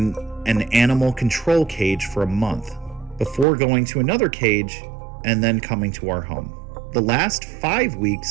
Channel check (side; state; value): left; drops out; at 3.5 s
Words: an animal control cage for a month, before going to another cage and then coming to our home. The last 5